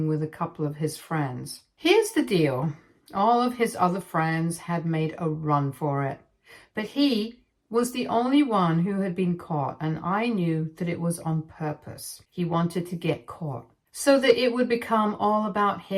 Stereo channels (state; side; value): identical; both; correlation 1.00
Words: with a couple of his friends. Here's the deal. All of his other friends had made a run for it, but he was the only one who had been caught, and I knew that it was on purpose. He wanted to get caught so that it would become all about